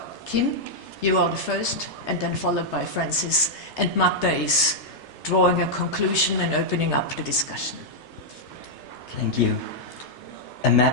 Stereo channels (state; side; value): late; right; 3.3 ms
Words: Kim, you are the first, and then followed by Francis, and Magda is drawing a conclusion and opening up the discussion. Thank you. A